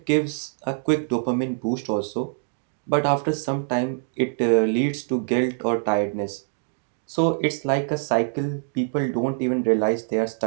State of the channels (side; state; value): left; silent; digital silence